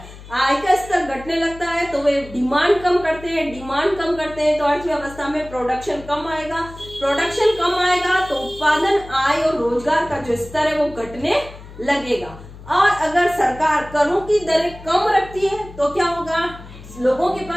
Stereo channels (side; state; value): left; noise; hum, 17 dB below the sound